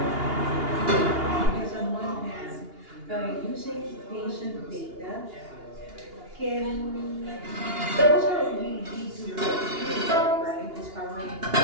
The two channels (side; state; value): left; late; 2.8 ms